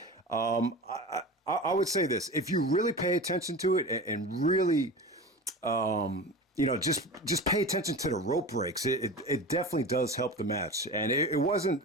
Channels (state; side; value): normal; both; correlation 0.31